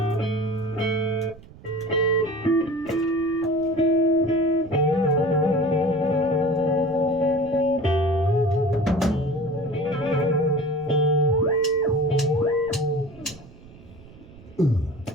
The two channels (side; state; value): right; noise; rumble, 21 dB below the sound